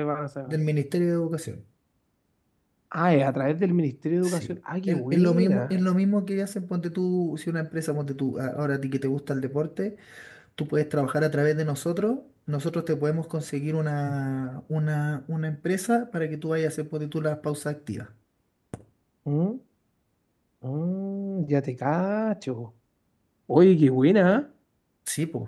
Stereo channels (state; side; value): identical; both; correlation 1.00